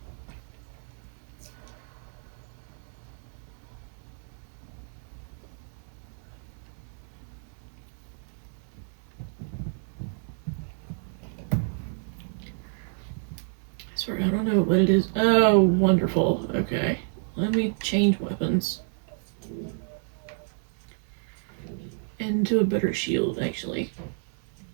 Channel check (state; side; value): silent; left; digital silence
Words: Sorry, I don't know what it is. Oh, wonderful. Okay. Let me change weapons. Into a better shield, actually.